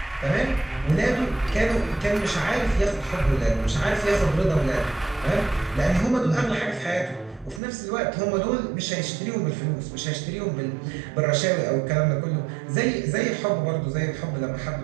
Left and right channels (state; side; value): drops out; left; at 7.6 s